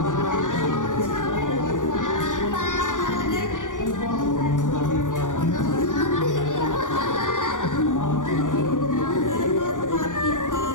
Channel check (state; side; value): late; right; 0.87 ms